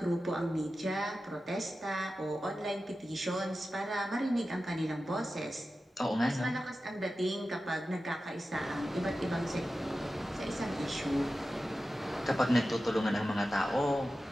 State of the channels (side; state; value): both; normal; correlation 0.93